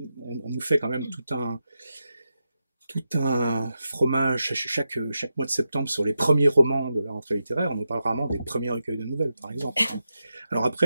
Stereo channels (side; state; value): both; inverted; correlation -0.88